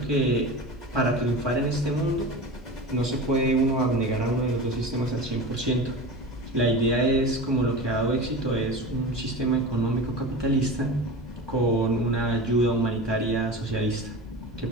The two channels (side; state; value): both; normal; correlation 0.31